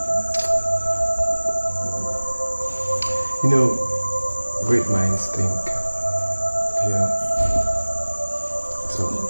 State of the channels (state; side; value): inverted; both; correlation -1.00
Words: You know, great minds think. Yeah. So,